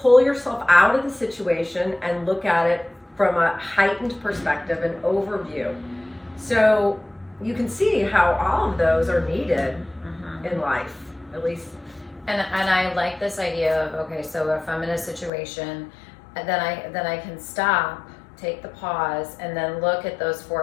pull yourself out of the situation and look at it from a heightened perspective, an overview. So you can see how all of those are needed in life, at least. And I like this idea of, okay, so if I'm in a situation, then I can stop, take the pause, and then look at those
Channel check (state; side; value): drops out; right; at 15.3 s